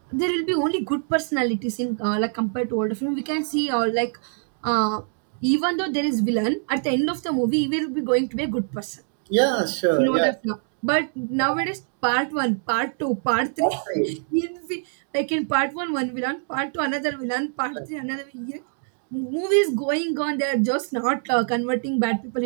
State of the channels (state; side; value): silent; left; 62 dB below the other